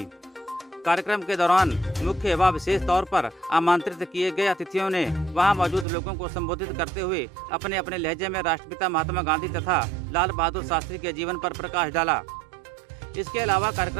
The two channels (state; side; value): drops out; left; at 5.9 s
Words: कार्यक्रम के दौरान मुख्य व विशेष तौर पर आमंत्रित किए गए अतिथियों ने वहां मौजूद लोगों को संबोधित करते हुए अपने अपने लहजे में राष्ट्रपिता महात्मा गांधी तथा लाल बहादुर शास्त्री के जीवन पर प्रकाश डाला। इसके अलावा